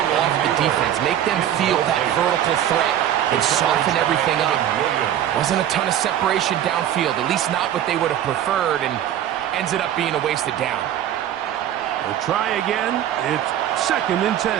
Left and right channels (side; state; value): left; quieter; 11.0 dB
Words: off the defense, make them feel that vertical threat. and soften everything up. Wasn't a ton of separation downfield, at least not what they would have preferred, and ends it up being a wasted down. We'll try again. It's 2nd and 10.